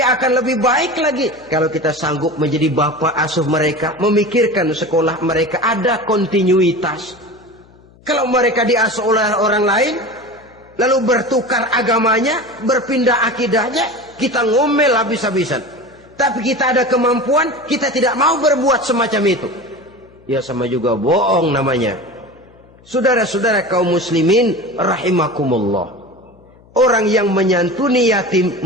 akan lebih baik lagi kalau kita sanggup menjadi bapak asuh mereka, memikirkan sekolah mereka, ada kontinuitas. Kalau mereka diasuh oleh orang lain, lalu bertukar agamanya, berpindah akidahnya, kita ngomel habis-habisan. Tapi kita ada kemampuan, kita tidak mau berbuat semacam itu. Ya sama juga bohong namanya. Saudara-saudara kaum muslimin rahimakumullah. Orang yang menyantuni yatim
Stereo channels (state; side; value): noise; left; hum, 27 dB below the sound